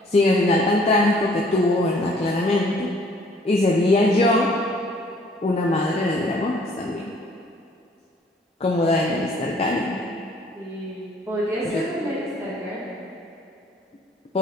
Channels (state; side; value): normal; both; correlation 0.59